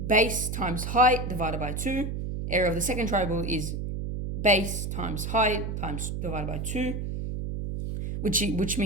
base times height divided by 2. area of the second triangle is base times height times divided by 2, which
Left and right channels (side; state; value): right; noise; hum, 4 dB below the sound